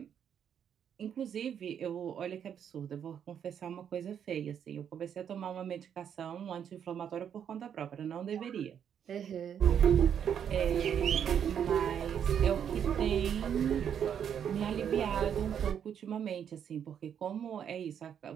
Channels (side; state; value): left; quieter; 8.5 dB